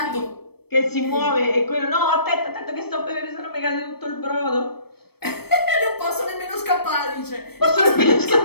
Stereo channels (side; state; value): right; late; 0.97 ms